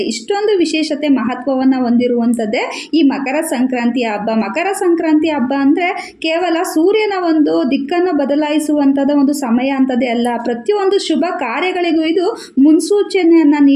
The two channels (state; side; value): identical; both; correlation 1.00